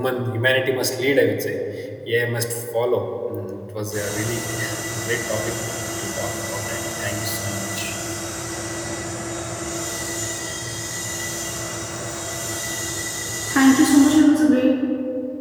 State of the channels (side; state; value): both; identical; correlation 1.00